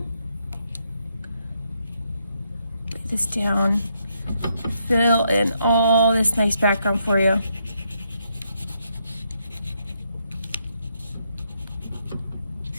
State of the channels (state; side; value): inverted; both; correlation -0.77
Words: Put this down. Fill in all this nice background for you.